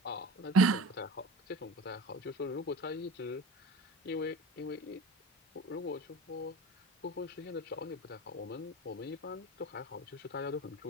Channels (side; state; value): both; normal; correlation 0.35